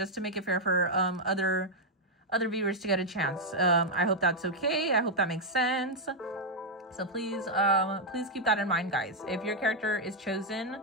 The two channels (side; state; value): both; normal; correlation -0.01